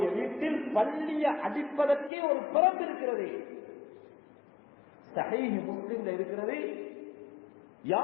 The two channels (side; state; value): right; drops out; at 2.1 s